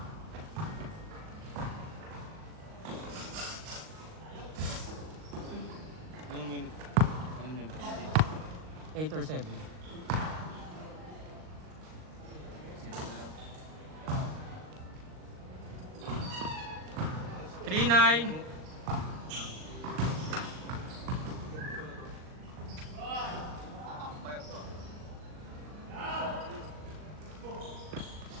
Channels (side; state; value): left; late; 38 ms